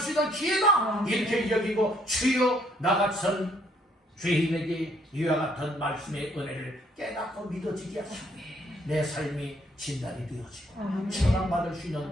있는 기회다 이렇게 여기고 주여 나 같은 죄인에게 이와 같은 말씀의 은혜를 깨닫고 믿어지게 하시고 내 삶이 진단이 되어지고 처방받을 수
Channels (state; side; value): normal; both; correlation 0.67